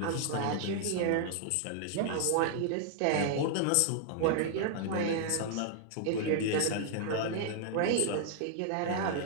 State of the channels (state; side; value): different; both; correlation -0.01